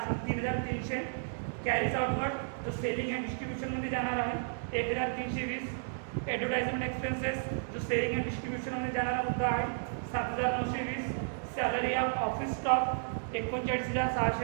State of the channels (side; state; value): left; silent; digital silence